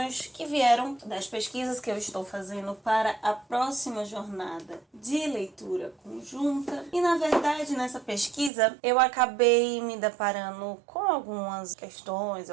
que vieram das pesquisas que eu estou fazendo para a próxima jornada de leitura conjunta. E, na verdade, nessa pesquisa, eu acabei me deparando com algumas questões,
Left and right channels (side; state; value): left; drops out; at 8.5 s